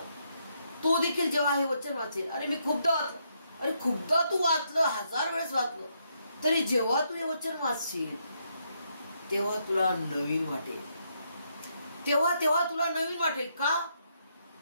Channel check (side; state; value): both; inverted; correlation -0.77